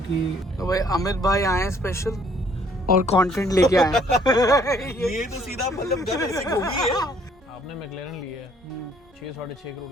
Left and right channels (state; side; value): normal; both; correlation 0.62